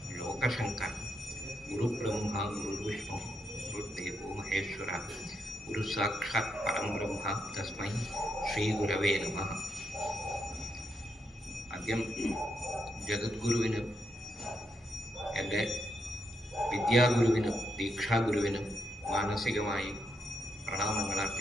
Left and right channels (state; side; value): normal; both; correlation 0.81